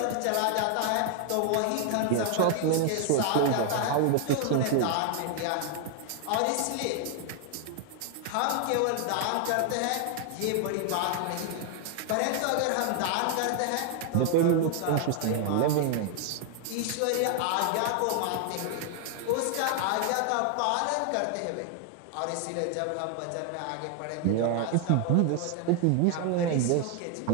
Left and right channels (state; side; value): different; both; correlation 0.00